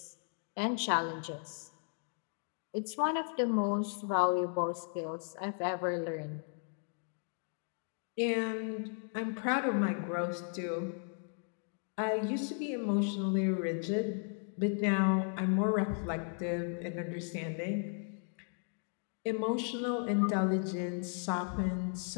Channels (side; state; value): right; silent; 54 dB below the other